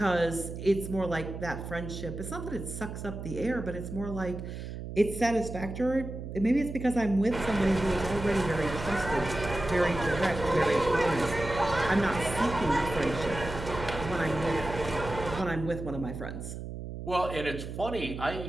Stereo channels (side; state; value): right; noise; hum, 8 dB below the sound